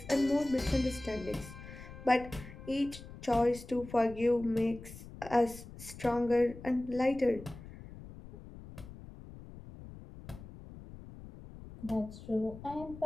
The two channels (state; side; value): noise; left; rumble, 15 dB below the sound